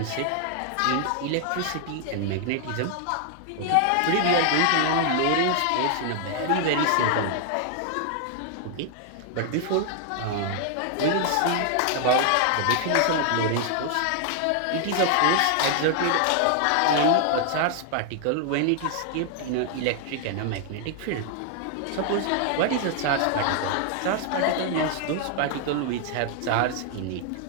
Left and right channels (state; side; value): different; both; correlation 0.00